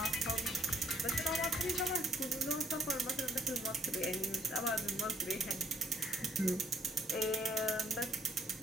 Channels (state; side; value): normal; both; correlation 0.67